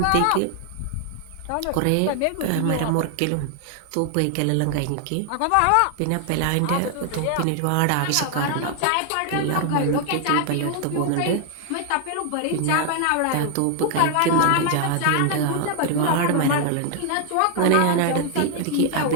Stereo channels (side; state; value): both; different; correlation 0.00